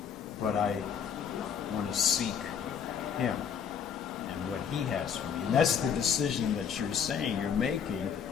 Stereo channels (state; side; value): quieter; right; 7.5 dB